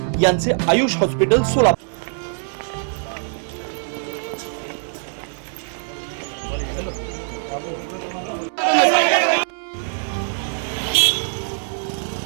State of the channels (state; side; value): silent; left; digital silence